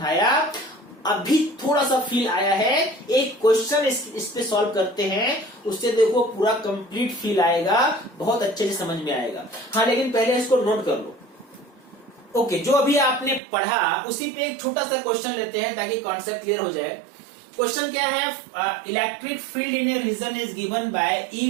अभी थोड़ा सा फील आया है, एक क्वेश्चन इस पे सॉल्व करते हैं, उससे देखो पूरा कंप्लीट फील आएगा, बहुत अच्छे से समझ में आएगा। हाँ, लेकिन पहले इसको नोट कर लो। ओके, जो अभी आपने पढ़ा उसी पे एक छोटा सा क्वेश्चन लेते हैं ताकि कॉन्सेप्ट क्लियर हो जाए। क्वेश्चन क्या है? Electric field in a region is given by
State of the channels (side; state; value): left; drops out; at 13.4 s